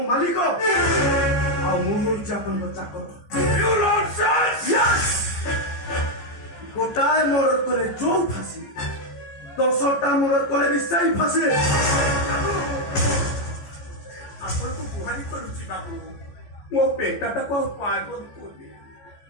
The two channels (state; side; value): late; right; 14 ms